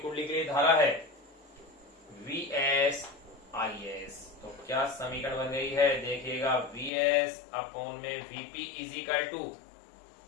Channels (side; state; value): right; drops out; at 6.9 s